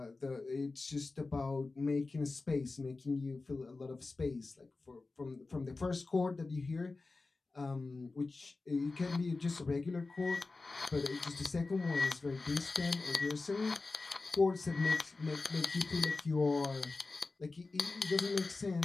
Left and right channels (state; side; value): quieter; right; 3.7 dB